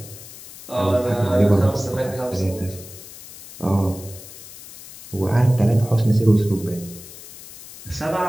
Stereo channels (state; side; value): noise; left; hiss, 16 dB below the sound